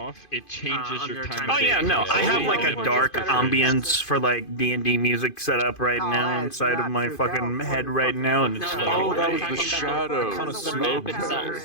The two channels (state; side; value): late; right; 2.5 ms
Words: it changes on your your time. time of Oh day. yeah, no, I have like a dark ambience for like D&D music set up right now inside of my fucking head right now, and it's Oh, that was the Talking about shadow. kind of